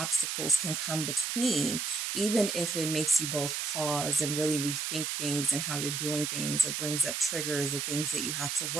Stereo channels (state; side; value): noise; right; hiss, 2 dB below the sound